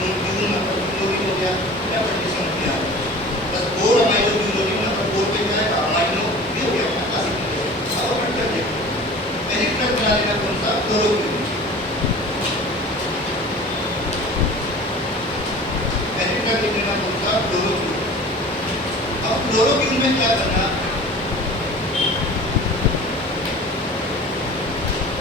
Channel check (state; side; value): normal; both; correlation 0.41